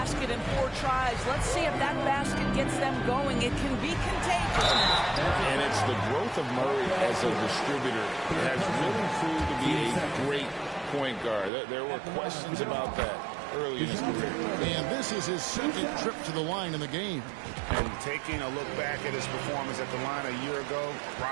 in 4 tries. Let's see if that basket gets them going. It can be contagious. And it's the growth of Murray as a distributor that has really proved to be a great point guard. There were questions about that early in his career. And this is his second trip to the line in the game. And taking a look back at his performance at the line a year ago,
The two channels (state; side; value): drops out; left; at 11.5 s